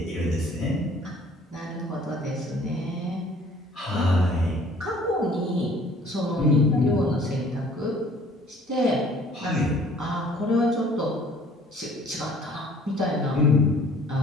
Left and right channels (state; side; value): normal; both; correlation 0.54